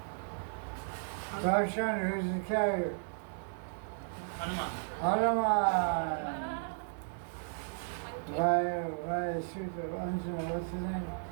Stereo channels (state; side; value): silent; left; 55 dB below the other